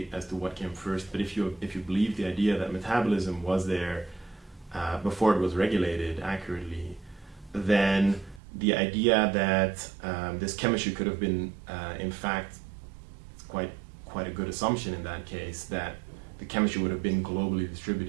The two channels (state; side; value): drops out; left; at 8.4 s